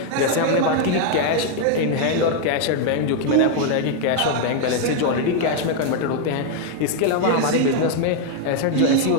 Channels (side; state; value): both; different; correlation 0.00